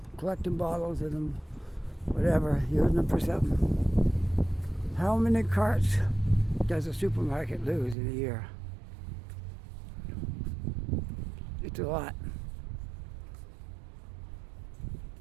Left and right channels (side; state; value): left; drops out; at 8.0 s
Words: collecting bottles of them, whatever, using them for something. How many carts does a supermarket lose in a year? It's a lot.